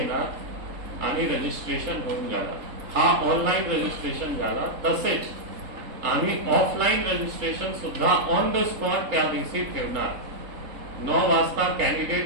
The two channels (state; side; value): late; left; 3.7 ms